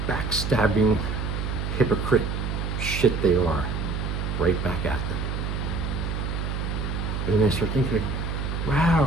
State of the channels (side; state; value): right; noise; hum, 2 dB below the sound